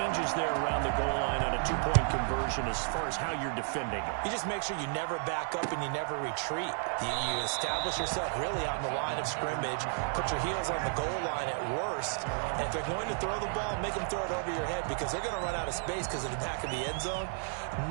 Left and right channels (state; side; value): silent; left; 56 dB below the other